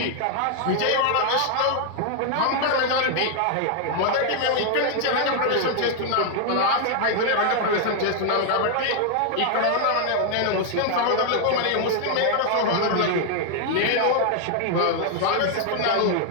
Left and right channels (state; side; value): different; both; correlation 0.00